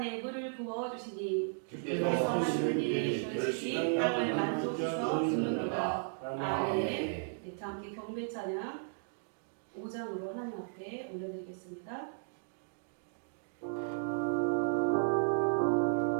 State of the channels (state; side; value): silent; left; digital silence